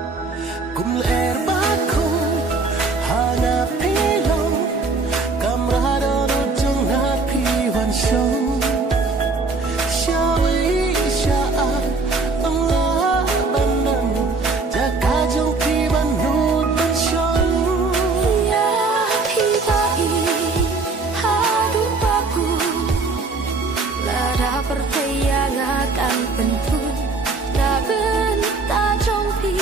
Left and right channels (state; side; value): quieter; left; 3.9 dB